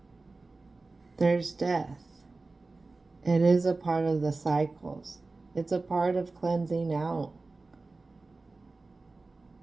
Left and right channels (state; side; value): quieter; left; 3.5 dB